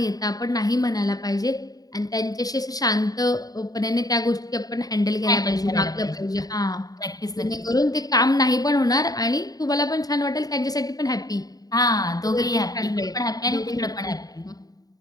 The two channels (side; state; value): right; late; 0.18 ms